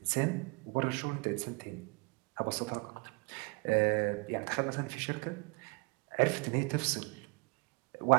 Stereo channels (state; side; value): quieter; left; 31.3 dB